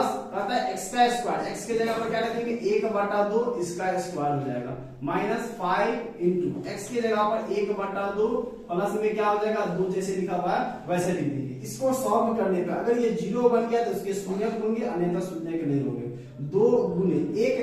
आता है x का स्क्वायर, x के जगह पर क्या रखेंगे 1/2 इसका स्क्वायर हो जाएगा, माइनस 5 इंटू x की जगह पर 1/2 प्लस में क्या हो जाएगा 2, जैसे लिखा हुआ है वैसे लिख दीजिए। इसको सॉल्व करने पर अगर ये 0 बन गया तो उसके शून्य होंगे, अन्यथा शून्य के नहीं होंगे। 2 गुने 1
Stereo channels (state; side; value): identical; both; correlation 1.00